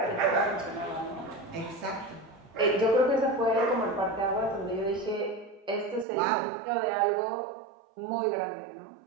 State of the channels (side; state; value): left; drops out; at 6.1 s